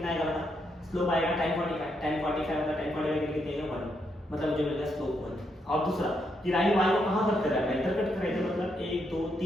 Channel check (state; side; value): normal; both; correlation 0.79